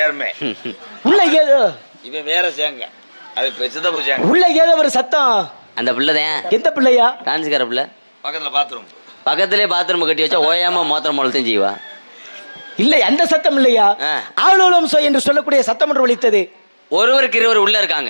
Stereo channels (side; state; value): both; inverted; correlation -1.00